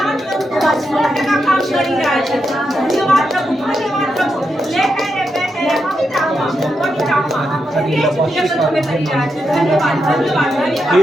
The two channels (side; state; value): both; normal; correlation 0.84